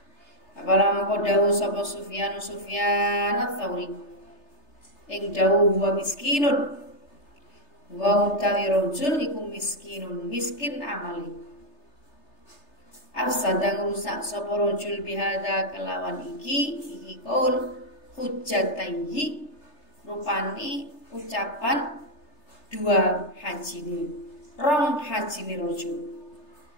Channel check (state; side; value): late; right; 3.3 ms